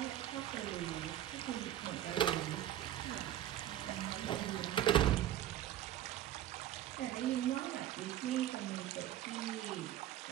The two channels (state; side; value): quieter; left; 12.5 dB